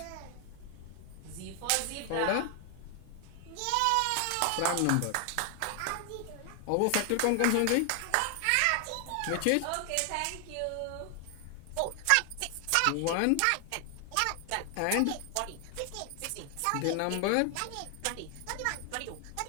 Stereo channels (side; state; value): both; different; correlation 0.00